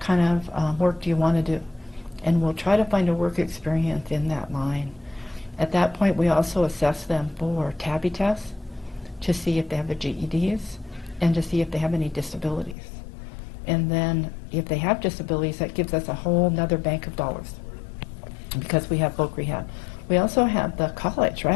of work do you want to do? And we'll try to find a work experience in that line. At that point, we also assess them for TABI tests to see if they have their GEDs and to see if they have any disabilities. And then if they have disabilities, that gives us a whole nother bank of dollars because we have voc rehab. We also have the college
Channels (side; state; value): right; drops out; at 12.8 s